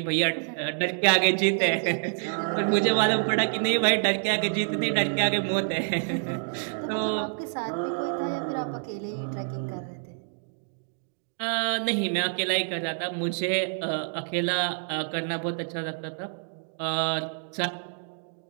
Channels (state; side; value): silent; left; 60 dB below the other